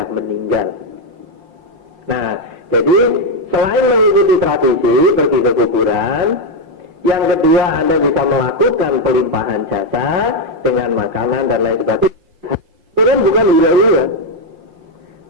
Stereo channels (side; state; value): left; late; 5.6 ms